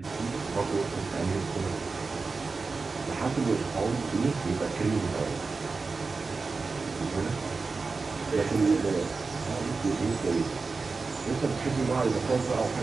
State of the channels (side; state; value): left; quieter; 4.2 dB